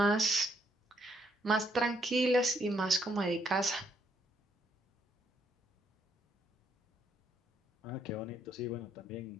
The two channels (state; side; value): normal; both; correlation 0.72